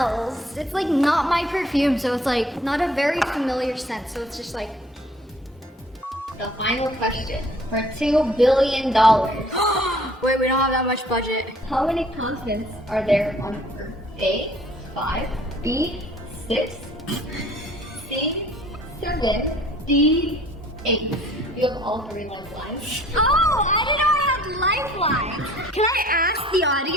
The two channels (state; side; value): normal; both; correlation 0.55